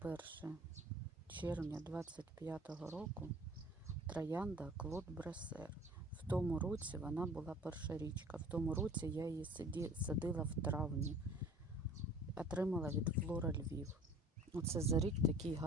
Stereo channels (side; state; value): both; normal; correlation 0.47